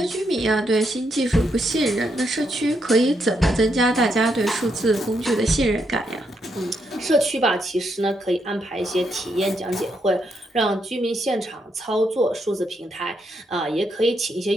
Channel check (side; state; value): both; normal; correlation 0.79